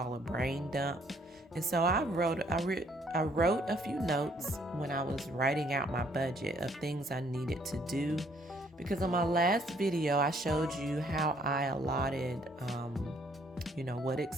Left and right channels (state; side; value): normal; both; correlation 0.65